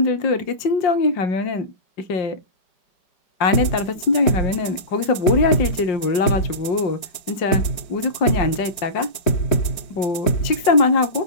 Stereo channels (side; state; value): right; late; 5.5 ms